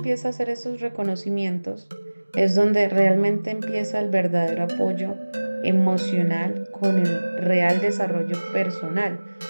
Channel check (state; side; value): inverted; both; correlation -1.00